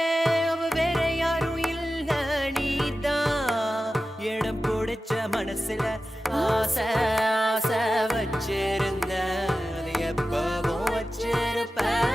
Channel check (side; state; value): both; normal; correlation 0.94